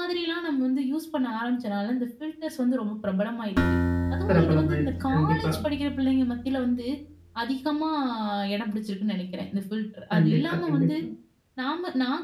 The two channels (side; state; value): both; identical; correlation 1.00